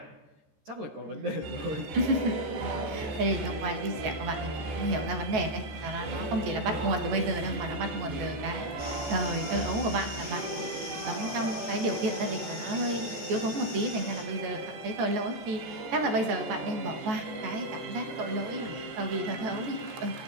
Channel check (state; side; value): late; left; 14 ms